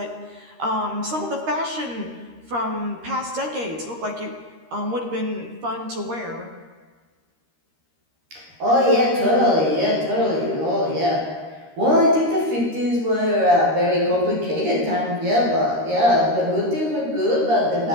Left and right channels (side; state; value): left; late; 13 ms